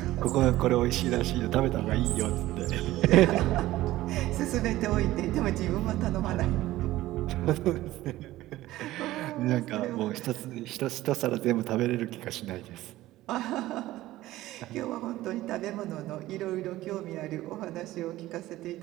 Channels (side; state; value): left; quieter; 16.2 dB